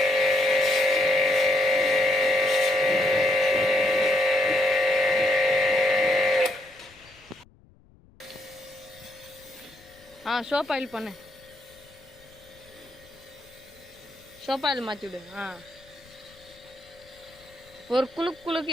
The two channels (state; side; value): noise; left; rumble, 28 dB below the sound